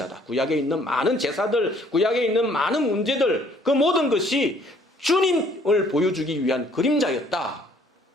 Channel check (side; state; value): both; normal; correlation 0.61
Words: 구약에 있는 많은 제사들, 구약에 있는 많은 문제들, 그 모든 것이 주님을 보여주기 위한 그림자였다